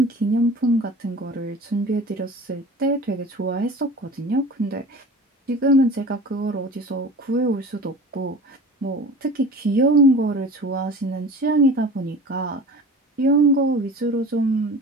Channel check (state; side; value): normal; both; correlation 0.38